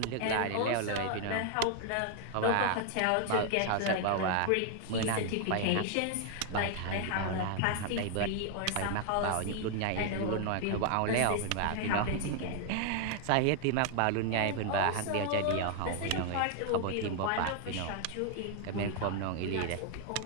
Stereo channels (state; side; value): different; both; correlation 0.00